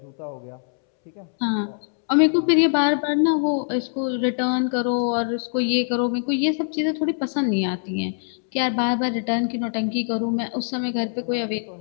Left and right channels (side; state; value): right; silent; 63 dB below the other